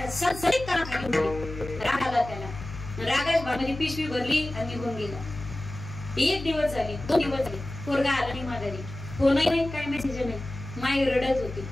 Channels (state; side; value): noise; left; hum, 11 dB below the sound